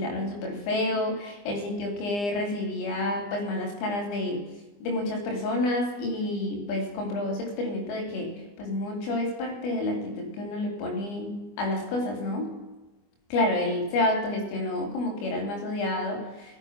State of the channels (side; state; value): right; late; 25 ms